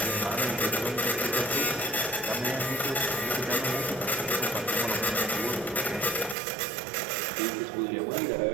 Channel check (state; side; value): drops out; left; at 6.4 s